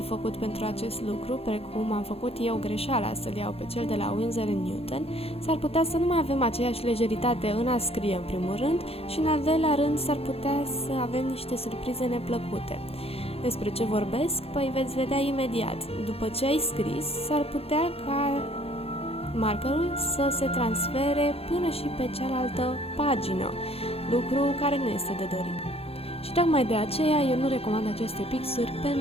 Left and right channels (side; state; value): right; late; 0.29 ms